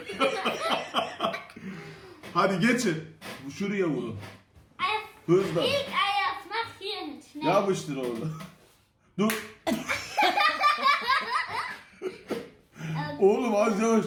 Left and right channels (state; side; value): identical; both; correlation 1.00